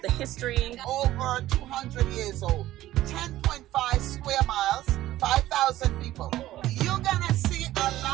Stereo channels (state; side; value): quieter; left; 14.8 dB